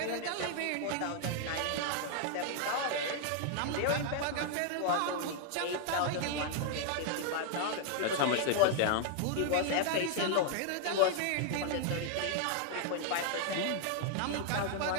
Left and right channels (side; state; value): both; different; correlation 0.00